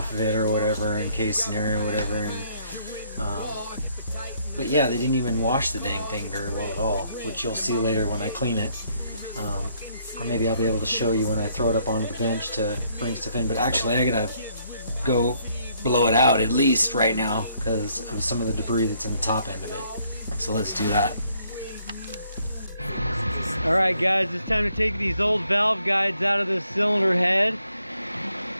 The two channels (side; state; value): both; inverted; correlation -0.68